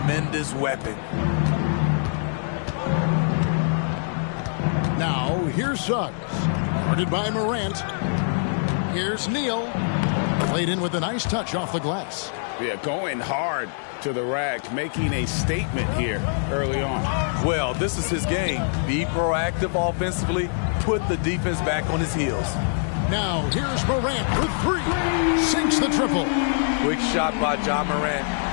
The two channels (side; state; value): right; silent; digital silence